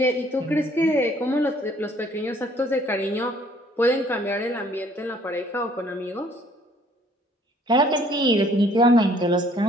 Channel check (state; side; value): normal; both; correlation 0.60